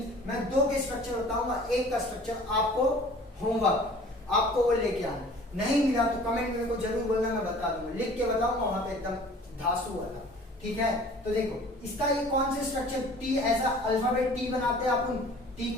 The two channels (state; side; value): normal; both; correlation 0.48